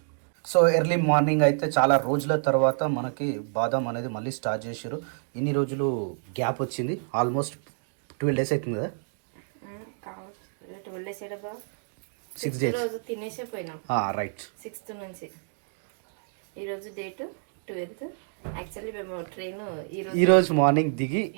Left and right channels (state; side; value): silent; left; digital silence